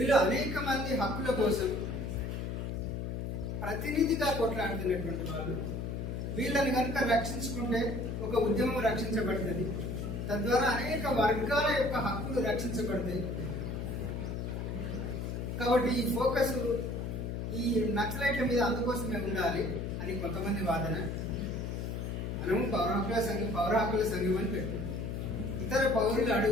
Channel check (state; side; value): noise; left; hum, 4 dB below the sound